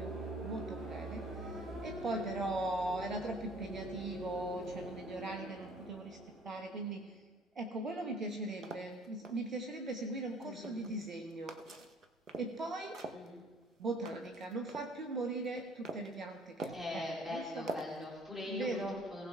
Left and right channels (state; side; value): normal; both; correlation 0.55